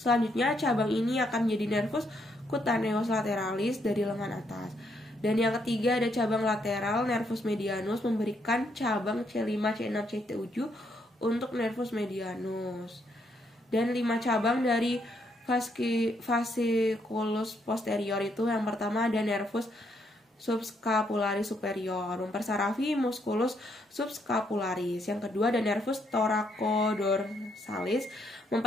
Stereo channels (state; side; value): normal; both; correlation 0.74